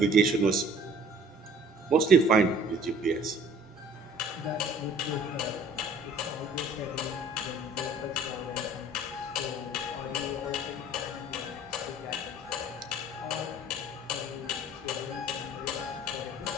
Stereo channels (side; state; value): both; normal; correlation 0.51